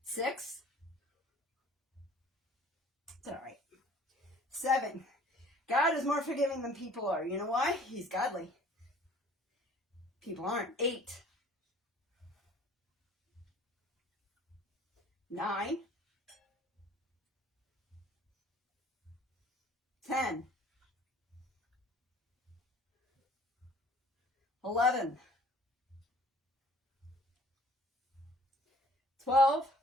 6. It's all right. 7. God is more forgiving than people are. You know why? He's godly. People aren't. 8. 9. 10. 11. 12.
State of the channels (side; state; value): both; normal; correlation 0.52